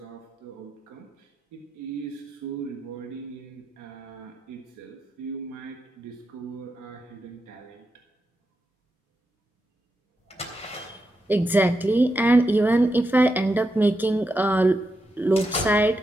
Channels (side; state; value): both; normal; correlation 0.86